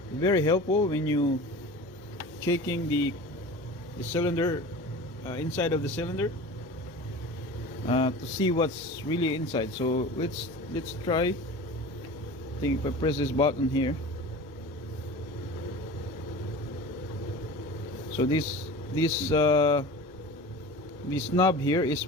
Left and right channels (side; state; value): both; normal; correlation 0.36